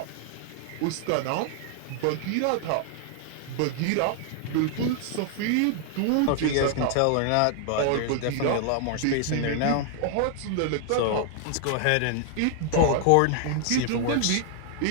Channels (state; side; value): different; both; correlation 0.00